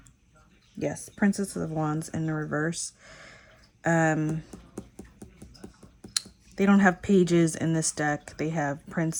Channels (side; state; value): both; identical; correlation 1.00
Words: yes, Princess of Wands in the reverse. They don't have pages in this deck. They have